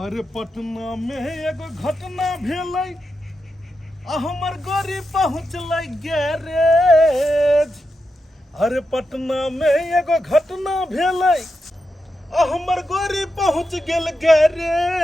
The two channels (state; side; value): normal; both; correlation 0.87